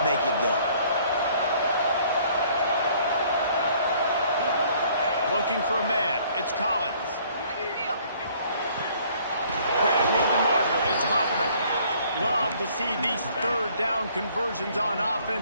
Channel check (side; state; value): both; inverted; correlation -0.59